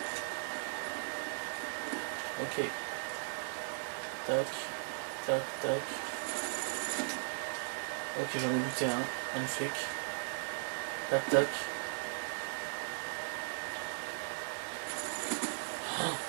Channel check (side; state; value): left; silent; 53 dB below the other